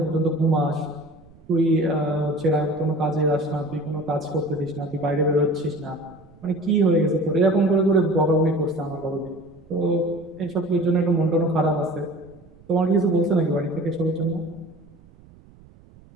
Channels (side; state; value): right; noise; rumble, 25 dB below the sound